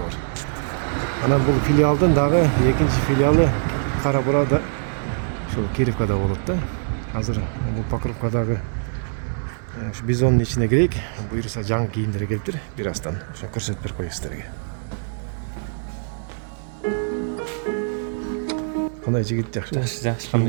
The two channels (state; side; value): silent; left; digital silence